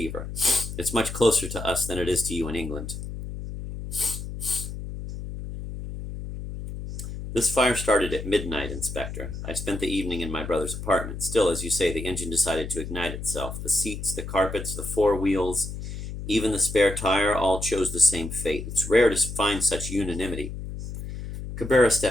It's much closer to us than it is to you in England. This fire started at midnight, Inspector. I spent the evening in my brother's apartment. Still, as you say, the engine decided to ignite itself. The seats, the carpets, the four wheels, even the spare tire, all chose the same fate. It's rare to find such unanimity. Cabrera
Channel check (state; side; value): noise; left; hum, 8 dB below the sound